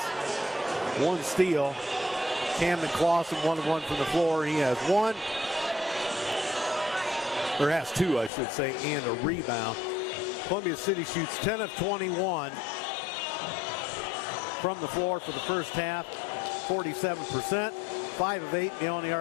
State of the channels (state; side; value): drops out; right; at 8.3 s